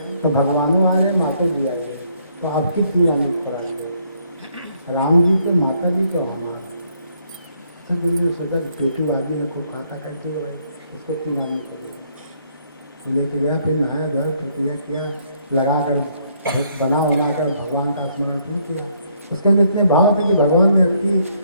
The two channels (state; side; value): inverted; both; correlation -0.69